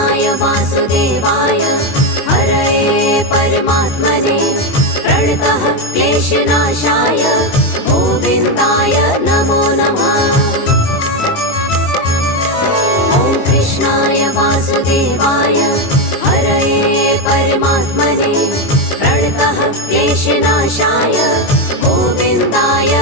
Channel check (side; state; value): right; late; 21 ms